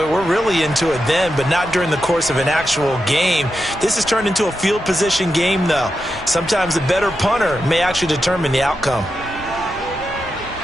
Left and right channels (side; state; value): both; normal; correlation 0.88